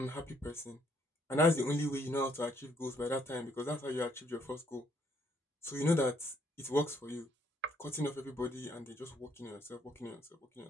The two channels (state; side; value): normal; both; correlation 0.69